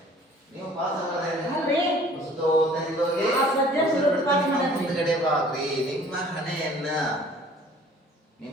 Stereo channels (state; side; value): normal; both; correlation 0.52